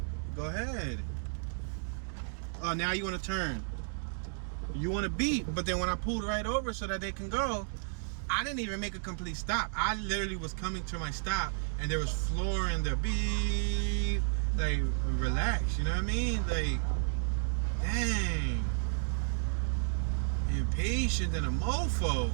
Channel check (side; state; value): left; silent; digital silence